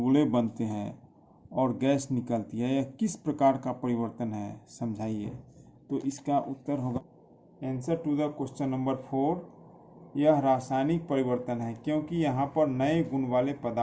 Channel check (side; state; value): both; identical; correlation 1.00